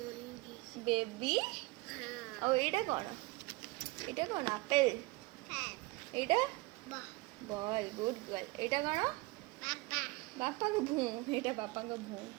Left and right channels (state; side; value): quieter; left; 23.5 dB